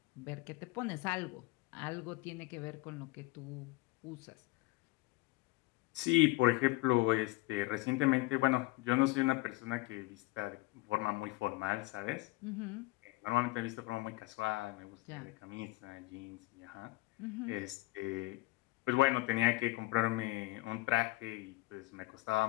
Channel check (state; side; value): quieter; right; 21.3 dB